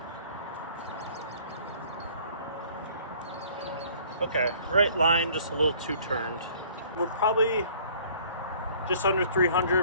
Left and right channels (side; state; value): both; inverted; correlation -0.53